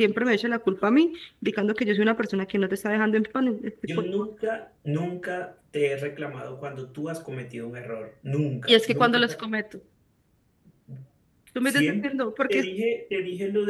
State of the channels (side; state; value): both; identical; correlation 1.00